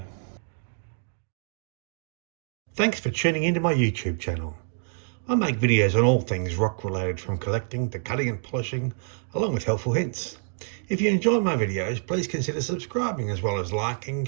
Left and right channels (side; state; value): left; silent; digital silence